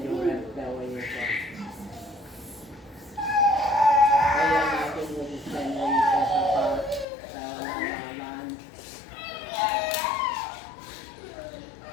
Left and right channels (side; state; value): right; drops out; at 7.1 s